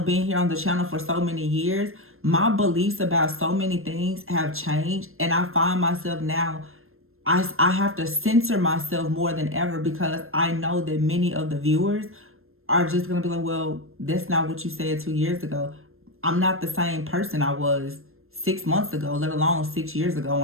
being here on the channel for so many years, my beliefs about so many things have changed. And I find myself now, I have to censor myself more than ever because I know that many of the viewers are just going to be like, well, that's not what you said 2 years ago. I'm not the same person I was 6 months ago, let alone 6 years ago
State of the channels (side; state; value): left; late; 0.61 ms